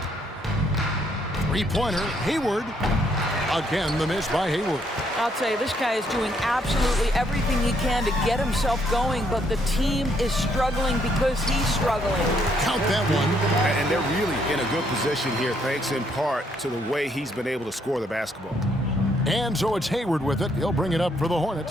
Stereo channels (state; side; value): normal; both; correlation 0.71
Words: 3-pointer, Hayward. Again, the miss by Hayward. I'll tell you, this guy is doing absolutely everything he can to get himself going, but the team is struggling because he's struggling. Count that one. And they're really in a good position here, thanks in part to the way he's been able to score the basketball. And so it's Hayward with it. He'll bring it up for the